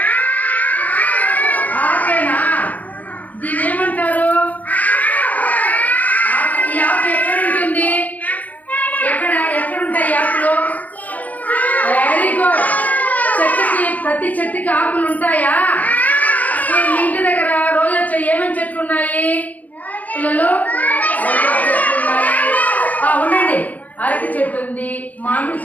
ఆకేనా? దీని ఏమంటారు? ఈ ఆకు ఎక్కడ ఉంటుంది? ఎక్కడుంటాయి ఆకులు? Very good. ప్రతి చెట్టుకి ఆకులు ఉంటాయా? మీ ఇంటి దగ్గర రోజా ఏమేమి చెట్లు ఉన్నాయి పిల్లలు? ఉండండి. అరటి చెట్టు ఉంది, మామిడి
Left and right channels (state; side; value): late; right; 0.077 ms